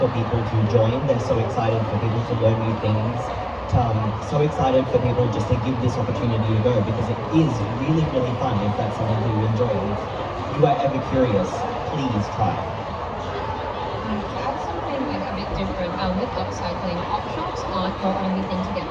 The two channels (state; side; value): identical; both; correlation 1.00